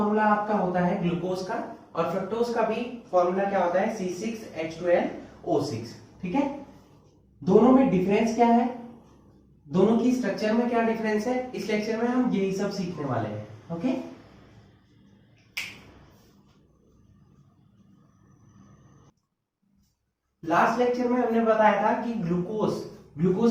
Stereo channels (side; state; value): both; identical; correlation 1.00